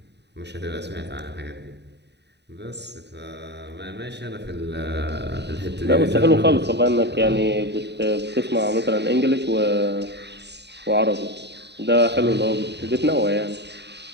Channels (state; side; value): late; left; 0.50 ms